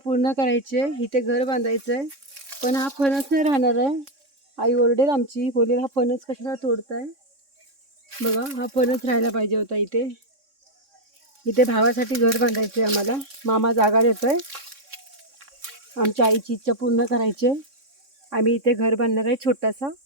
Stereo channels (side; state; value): left; late; 3.6 ms